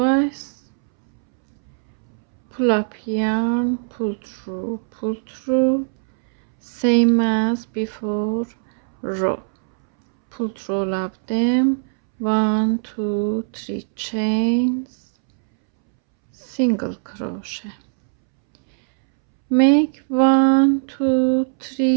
pull up yarn, pull through, same as before row, pull through all of them, 1 2 3 chains, single crochet, make 1 2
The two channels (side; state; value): left; silent; 65 dB below the other